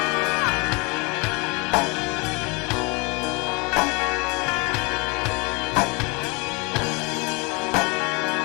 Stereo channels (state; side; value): quieter; right; 29.0 dB